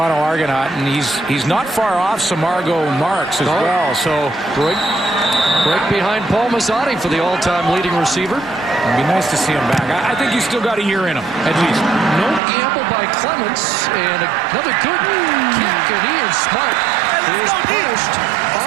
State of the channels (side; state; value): left; drops out; at 12.4 s